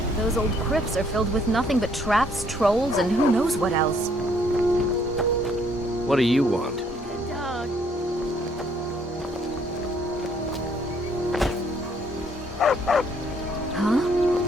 Those old crypts are filled with nothing but traps, trolls, and who knows what else. What do you want? Good dog. Huh?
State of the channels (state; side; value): normal; both; correlation 0.66